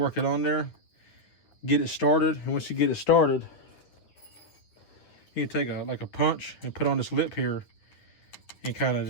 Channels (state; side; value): late; right; 9.8 ms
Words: it on there, get it started. And once you get it started, you can take like a punch and put on this lip here and kind of